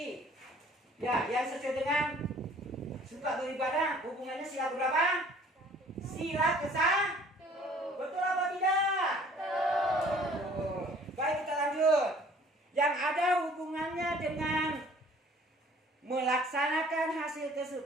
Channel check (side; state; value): both; normal; correlation 0.54